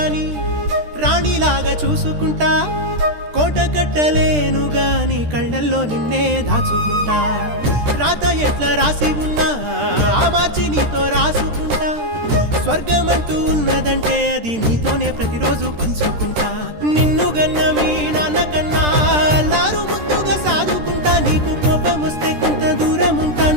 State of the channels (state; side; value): late; left; 13 ms